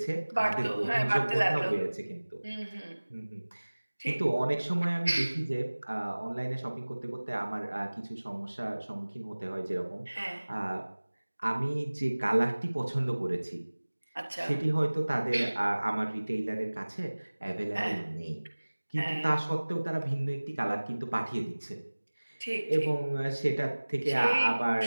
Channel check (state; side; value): inverted; both; correlation -1.00